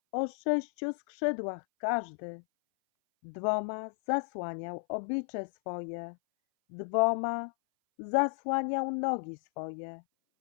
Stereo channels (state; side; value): silent; right; 56 dB below the other